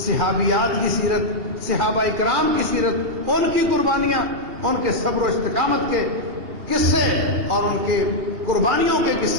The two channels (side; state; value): left; late; 2.8 ms